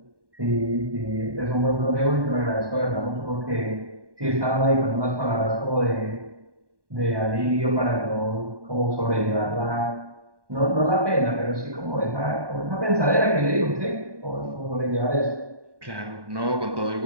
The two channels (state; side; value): late; left; 1.2 ms